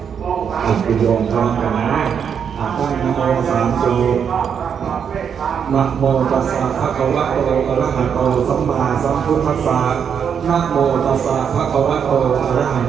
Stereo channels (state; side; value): quieter; left; 7.4 dB